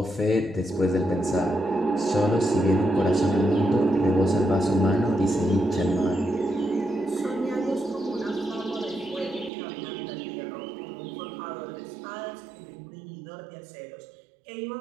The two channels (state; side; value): drops out; left; at 9.5 s